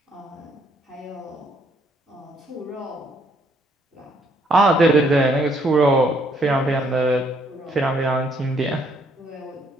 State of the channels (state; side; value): normal; both; correlation 0.68